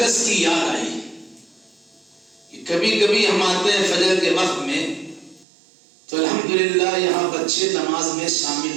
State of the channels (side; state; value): left; drops out; at 5.5 s